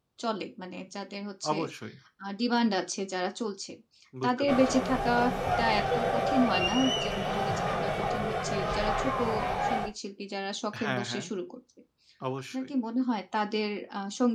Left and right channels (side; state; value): both; identical; correlation 1.00